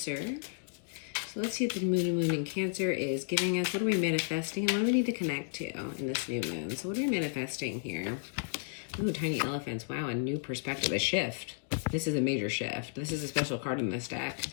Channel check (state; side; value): silent; right; digital silence